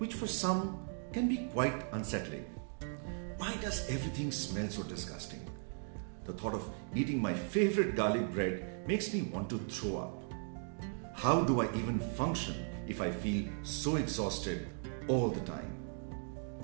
for some can be quite unsettling. Why does everything smell so disgusting? The thought of eating my favorite garlic bread makes me want to throw up. How do I even function if I feel so exhausted all the time?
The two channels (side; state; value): left; silent; 53 dB below the other